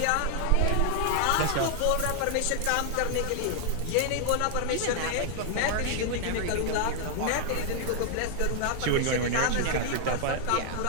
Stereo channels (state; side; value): different; both; correlation 0.00